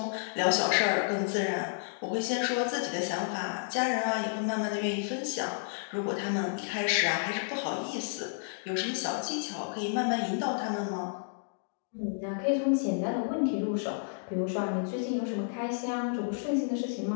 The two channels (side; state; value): right; silent; digital silence